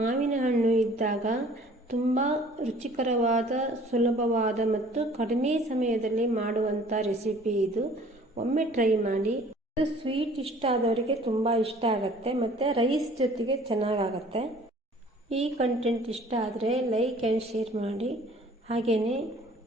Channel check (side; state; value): both; normal; correlation 0.52